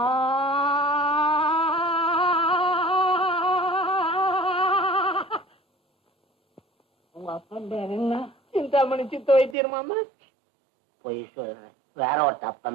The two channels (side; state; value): left; drops out; at 9.6 s